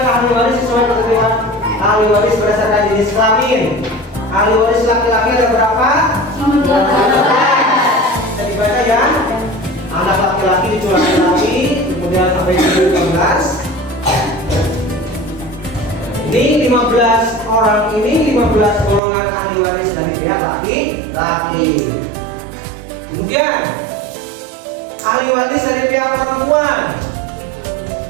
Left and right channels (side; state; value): left; drops out; at 19.0 s